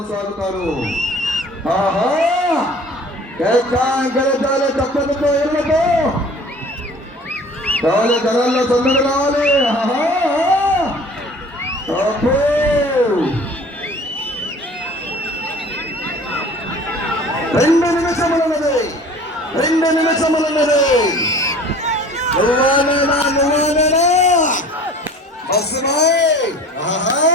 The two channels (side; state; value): both; normal; correlation 0.46